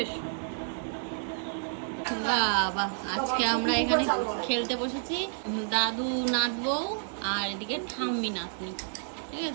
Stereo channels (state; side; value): silent; left; digital silence